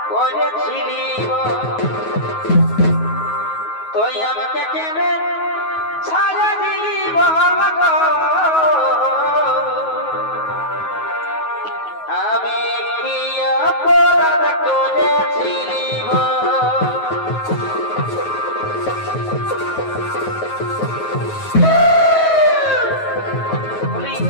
করেছিলি তুই আমাকে কেনে ছাড়া দিলি বল গো আমি প্রিয় পোড়া করেছিলি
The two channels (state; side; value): late; right; 9.3 ms